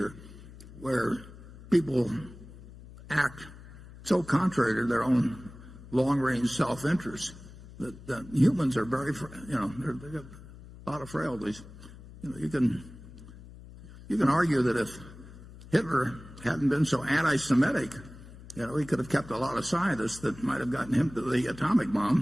where people act so contrary to their own long-range self-interest that humans are very, they've got a lot of frailties. You can argue that if Hitler hadn't been so anti-Semitic, he could have kept a lot of scientists that might have gotten him to the atomic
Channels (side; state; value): left; noise; hum, 17 dB below the sound